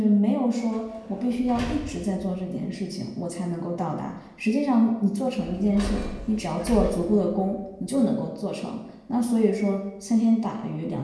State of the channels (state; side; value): identical; both; correlation 1.00